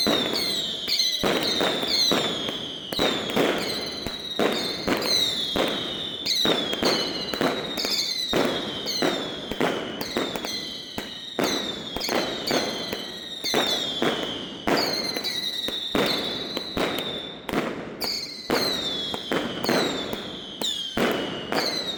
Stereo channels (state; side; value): identical; both; correlation 1.00